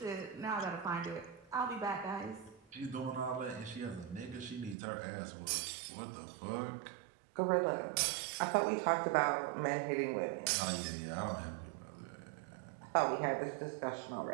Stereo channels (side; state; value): left; drops out; at 4.8 s